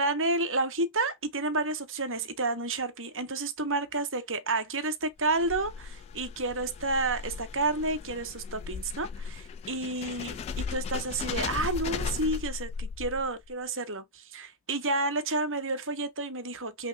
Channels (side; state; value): both; normal; correlation -0.20